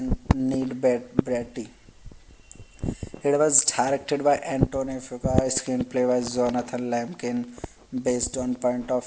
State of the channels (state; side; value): identical; both; correlation 1.00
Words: Neil Bratty. It was directed by Antonio Fuqua, screenplay by Jonathan Lemkin, based on Point